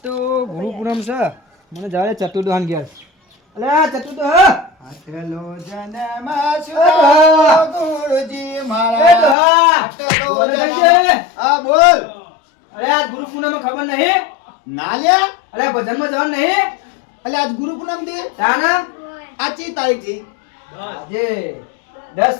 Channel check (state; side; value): drops out; right; at 9.3 s